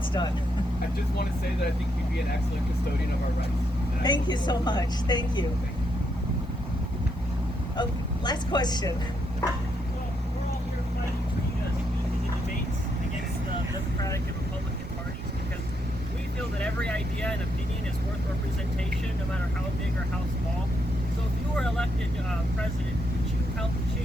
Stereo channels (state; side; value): normal; both; correlation 0.78